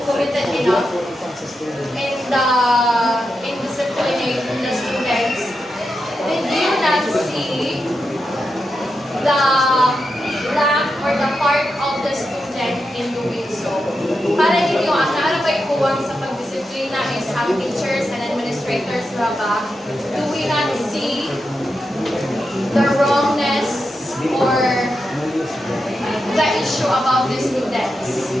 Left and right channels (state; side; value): normal; both; correlation 0.87